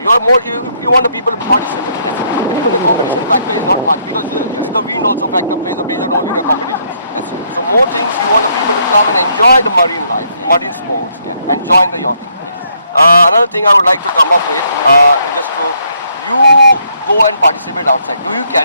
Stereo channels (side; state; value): both; inverted; correlation -0.71